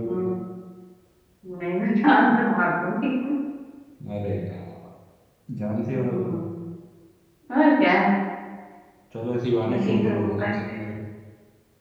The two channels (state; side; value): identical; both; correlation 1.00